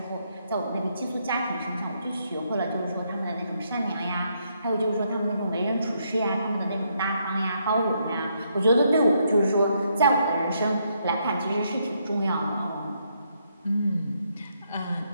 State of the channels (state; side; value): inverted; both; correlation -0.75